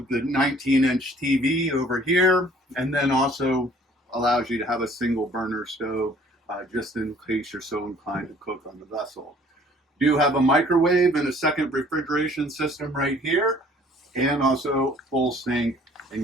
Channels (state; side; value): normal; both; correlation 0.56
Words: the 19-inch TV over here, and then also allows you to have a single burner stove just in case you're so inclined to cook on the vessel. You have a microwave and a second refrigeration system right here, and also full sink